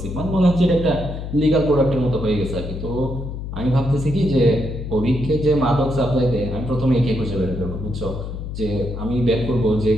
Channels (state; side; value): noise; left; hum, 7 dB below the sound